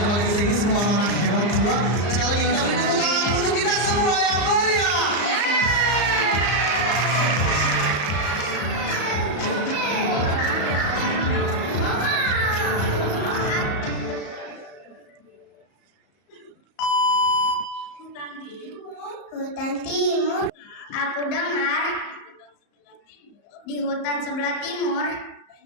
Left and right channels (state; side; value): late; right; 34 ms